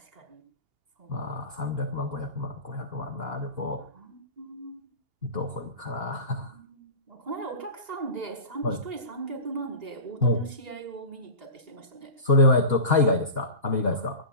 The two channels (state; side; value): late; left; 2.8 ms